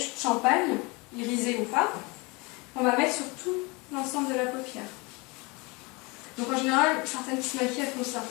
champagne, irisé ou pas. On va mettre sur tout l'ensemble de la paupière. Donc en général, certaines qui se maquillent, elles font ça.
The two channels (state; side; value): quieter; right; 26.8 dB